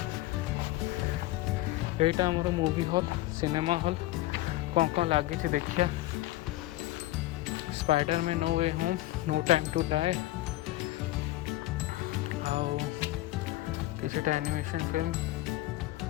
यहाँ आमर मूवी हॉल सिनेमा हॉल कौन लगी देखिए Spiderman no way home no time to die आउ किछटा एनिमेशन फिल्म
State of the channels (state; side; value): quieter; right; 16.8 dB